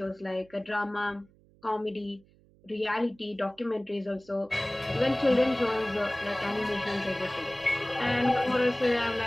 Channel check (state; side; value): noise; right; hum, 29 dB below the sound